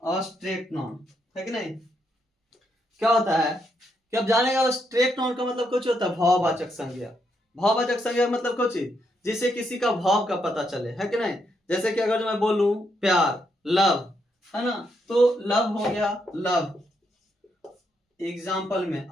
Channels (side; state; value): both; normal; correlation 0.78